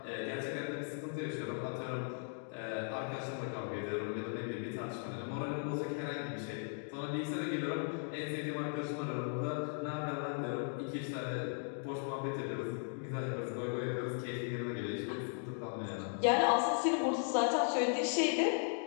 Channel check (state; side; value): silent; right; 53 dB below the other